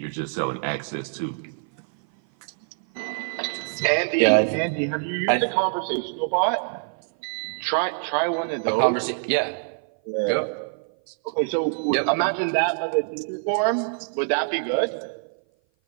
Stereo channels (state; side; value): silent; left; 57 dB below the other